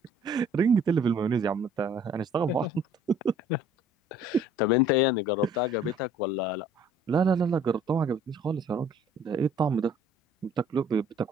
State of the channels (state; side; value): normal; both; correlation 0.55